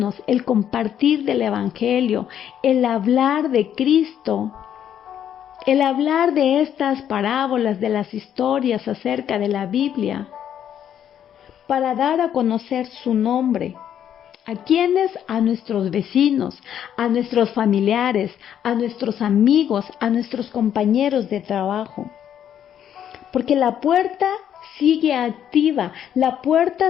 el compartir del Evangelio, el hablar de Cristo, el hablar de estas parábolas, de las historias acerca de la Biblia, para dar a conocer su nombre. ¿A quiénes? A nuestros vecinos, a nuestros familiares, a nuestros amigos, a nuestros compañeros de trabajo. Porque la puerta sigue activa, la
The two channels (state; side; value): quieter; right; 9.7 dB